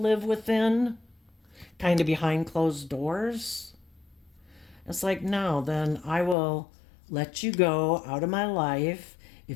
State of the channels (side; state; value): right; drops out; at 6.4 s